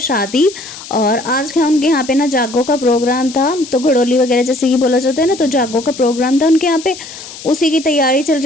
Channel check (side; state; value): left; noise; hiss, 14 dB below the sound